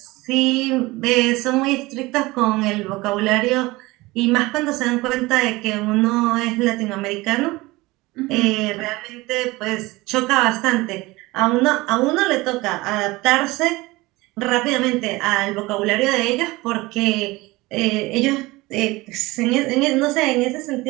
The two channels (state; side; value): quieter; left; 21.1 dB